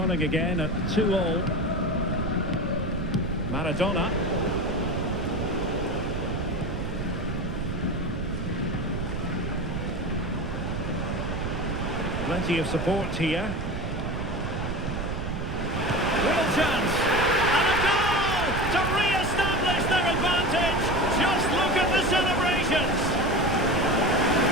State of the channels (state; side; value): noise; right; rumble, 4 dB below the sound